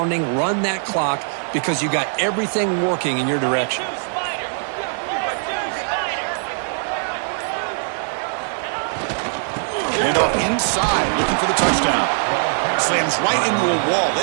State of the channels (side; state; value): left; silent; 60 dB below the other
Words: Run that clock because you got everything working in your direction. And off inside, looking for the touchdown. Slams right into a wall.